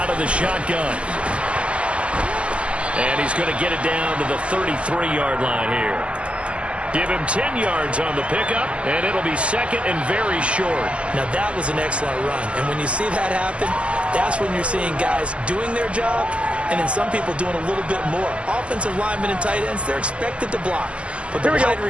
of the shotgun. And he's going to get it down to the 33-yard line here. Give him 10 yards on the pickup, and it'll be 2nd and very short. Now, that was an excellent run. And when you see that happen, that's when you're seeing guys doing their job, and then some people doing a little bit more. Offensive linemen and tight ends, they're expected to block. But the wide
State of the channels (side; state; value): left; late; 0.060 ms